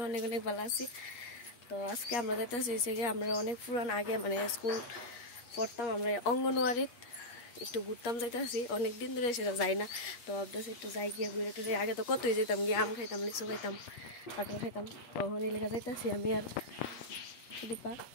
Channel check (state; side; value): late; right; 8.4 ms